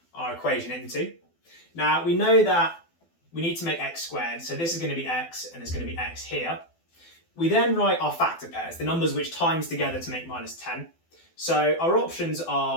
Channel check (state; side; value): late; right; 12 ms